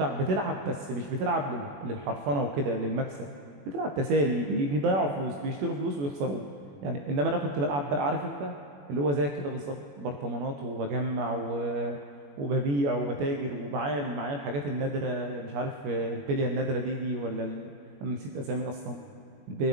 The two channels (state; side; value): late; left; 21 ms